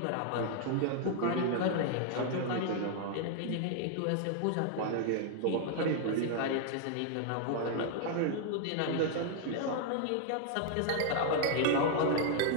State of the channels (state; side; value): different; both; correlation 0.00